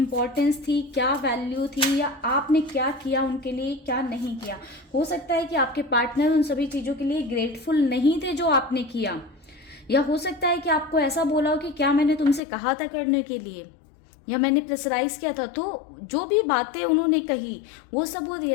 थी, क्या वैल्यू थी, या आपने क्या किया उनके लिए, क्या नहीं किया। हो सकता है कि आपके पार्टनर उन सभी चीज़ों के लिए ग्रेटफुल नहीं थे जो आपने किया, या हो सकता है कि आपको ऐसा बोला हो कि क्या मैंने तुमसे कहा था करने के लिए, या मैंने प्रेशराइज किया था। तो जो भी बातें उन्होंने कही वो सब वो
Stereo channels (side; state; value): right; drops out; at 12.4 s